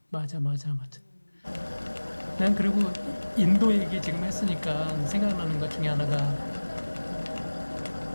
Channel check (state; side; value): inverted; both; correlation -1.00